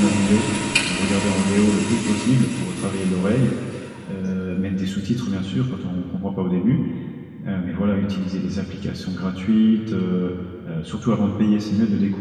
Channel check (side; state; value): both; identical; correlation 1.00